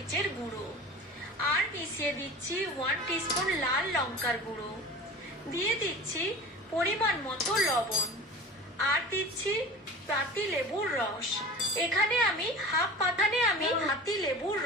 গুঁড়ো, আর মিশিয়ে দিচ্ছি 1 টিস্পুন লাল লঙ্কার গুঁড়ো, দিয়ে দিচ্ছি পরিমাণ মতো লবণ, আর দিচ্ছি পাতি লেবুর রস। এখানে আমি হাফ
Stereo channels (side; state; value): both; normal; correlation 0.36